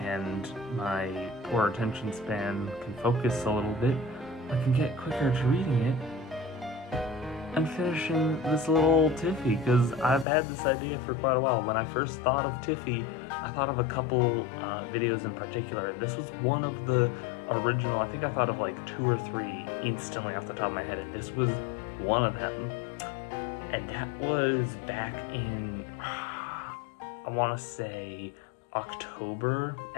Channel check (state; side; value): drops out; right; at 10.2 s